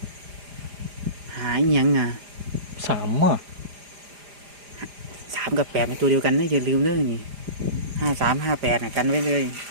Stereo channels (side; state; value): left; late; 4.9 ms